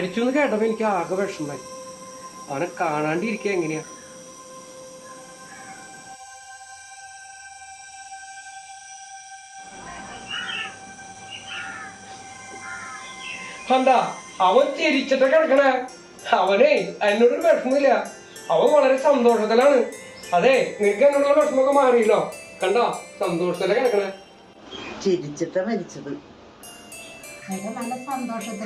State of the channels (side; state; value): both; identical; correlation 1.00